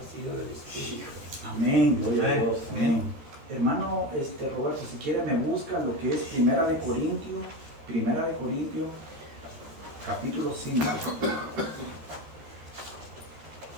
del Espíritu. Amén, gloria a Dios. Amén. Hermano Roberto, si quiere me busca lo que es Primera de Corintios, capítulo 5.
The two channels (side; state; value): left; late; 13 ms